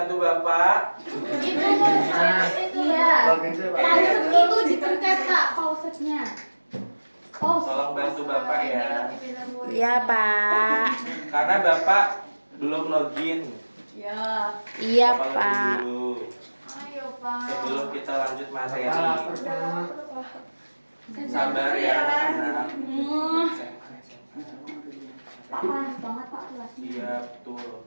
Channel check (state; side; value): inverted; both; correlation -1.00